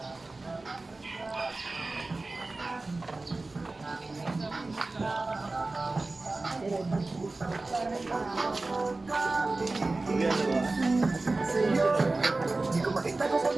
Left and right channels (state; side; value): quieter; left; 3.3 dB